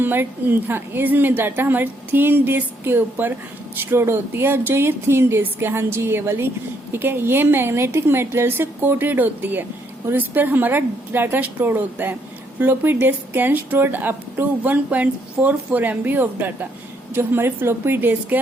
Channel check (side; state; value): both; normal; correlation 0.72